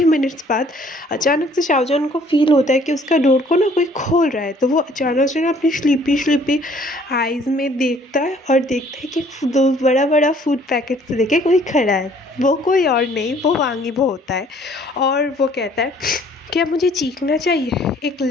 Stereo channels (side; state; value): both; normal; correlation 0.58